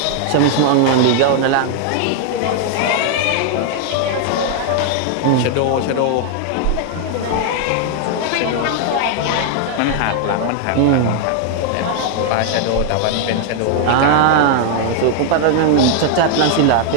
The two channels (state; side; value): different; both; correlation 0.00